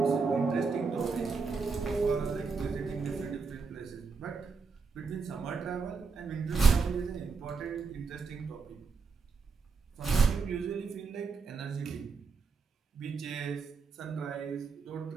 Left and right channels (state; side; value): quieter; left; 4.9 dB